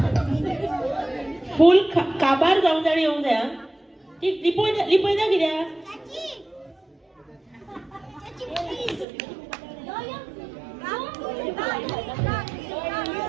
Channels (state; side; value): drops out; left; at 9.1 s